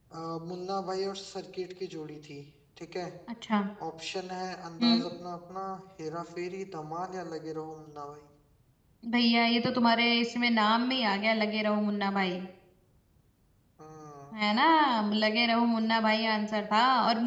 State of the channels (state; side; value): identical; both; correlation 1.00